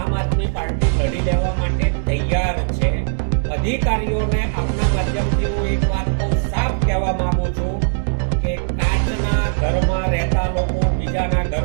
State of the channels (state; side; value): silent; left; digital silence